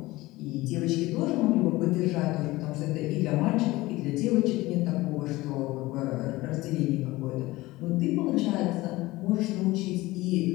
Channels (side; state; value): right; quieter; 19.4 dB